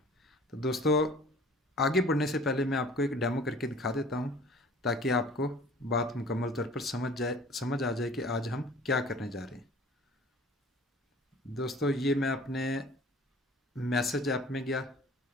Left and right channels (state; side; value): normal; both; correlation 0.47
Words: तो दोस्तों, आगे बढ़ने से पहले मैं आपको एक डेमो करके दिखा देता हूँ ताकि आपको बात मुकम्मल तौर पर समझ आ जाए कि आज हम क्या करने जा रहे हैं। दोस्तों, ये मैं अपने मैसेज ऐप में गया